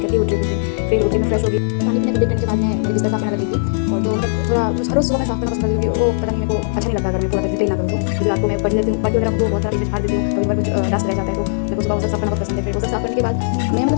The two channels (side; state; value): right; silent; digital silence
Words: करके उठ रही थी। फिर उठे मैं फ्रेश हो गई, पानी पीने के बाद मैं मेरी बिस्तर साफ करने लगी थी। और तो मतलब थोड़ा हर रोज़ सुबह मैं साफ करना पसंद करती हूँ। वो पता नहीं मेरे को अच्छा नहीं लगता अगर मैं पूरा क्लीन ना करूँ तो। क्योंकि रात को मैं पढ़ लेती हूँ, पढ़ वगैरह को बहुत सारा पेज फाड़ देती हूँ, कभी बार कुछ डस्ट रह जाता है तो मेरे को सुबह वो सब साफ करना बहुत पसंद है। फिर वो सब साफ करने के बाद मैं